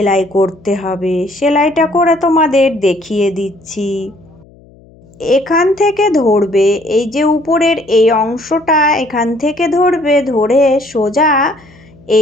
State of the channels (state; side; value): noise; left; hum, 26 dB below the sound